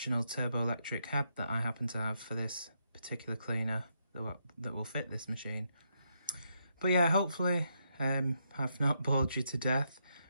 turbo-electric head that I happen to have for this particular cleaner that will fit this machine. But yeah, hopefully I've not bored you to death.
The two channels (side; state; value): both; inverted; correlation -0.79